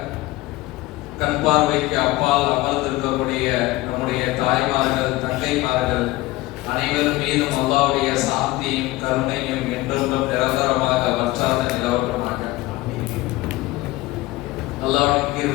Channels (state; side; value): quieter; right; 18.9 dB